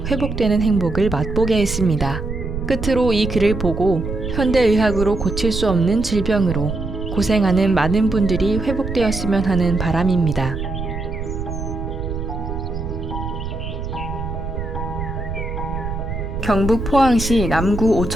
회복되는 행복을 맛보게 했습니다. 끝으로 이 글을 보고 현대의학으로 고칠 수 없는 질병으로 고생하는 많은 분들이 회복되었으면 하는 바람입니다. 경북 포항시 남구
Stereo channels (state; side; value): noise; right; rumble, 5 dB below the sound